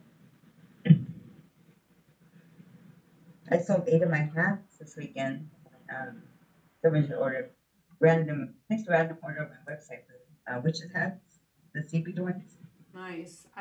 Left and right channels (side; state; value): both; identical; correlation 1.00